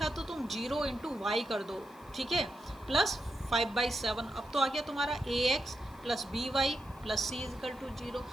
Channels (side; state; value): left; noise; hiss, 27 dB below the sound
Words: तो तुम 0 इंटू वाई कर दो, ठीक है, प्लस 5/7। अब तो आ गया तुम्हारा ax plus B Y plus C equal to 0।